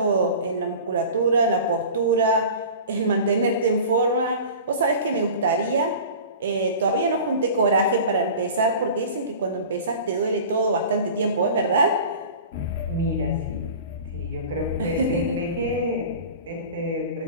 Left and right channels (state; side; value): inverted; both; correlation -0.38